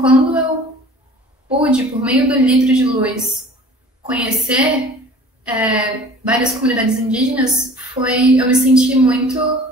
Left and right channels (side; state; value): both; normal; correlation 0.46